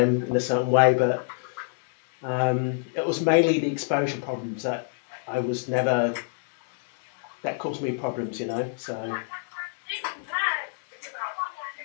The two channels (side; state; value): right; silent; digital silence